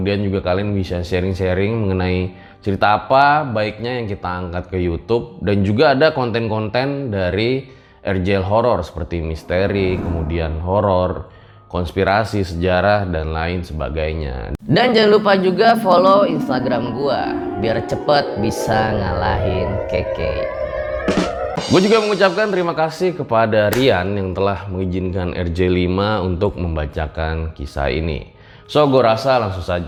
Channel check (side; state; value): both; identical; correlation 1.00